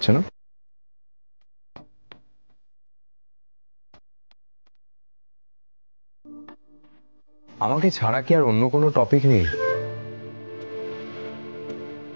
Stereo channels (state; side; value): inverted; both; correlation -1.00